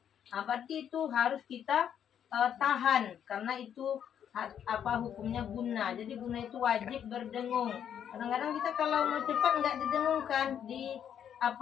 Berarti itu harus kita tahan karena itu apa hukumnya guna. Jadi guna itu wajib berdengung. Kadang-kadang kita kalau mau cepat nggak didengungkan, di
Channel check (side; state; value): right; quieter; 9.0 dB